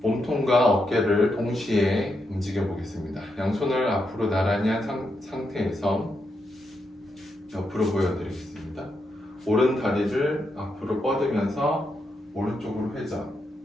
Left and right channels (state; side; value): normal; both; correlation 0.83